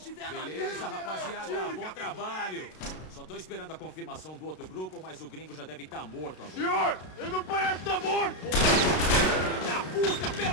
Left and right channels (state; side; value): late; right; 32 ms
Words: Beleza, rapaziada. Bom trabalho. Só tô esperando a confirmação do outro grupo, mas o gringo já deve estar morto agora. Senhor! Ele não parece estar morto! Filho da puta,